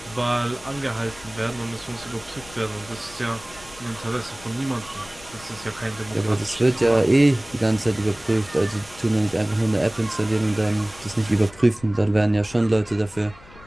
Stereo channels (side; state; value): left; noise; rumble, 21 dB below the sound